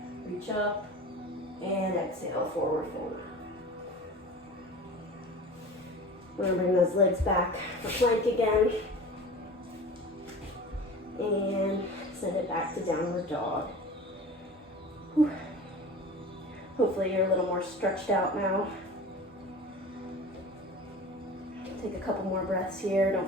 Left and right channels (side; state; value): both; normal; correlation 0.37